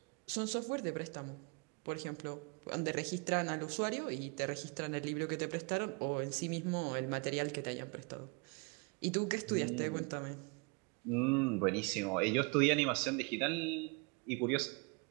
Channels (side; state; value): left; quieter; 31.8 dB